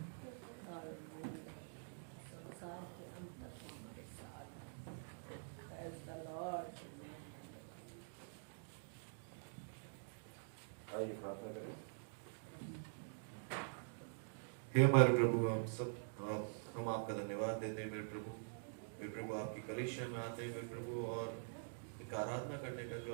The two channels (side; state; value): left; silent; digital silence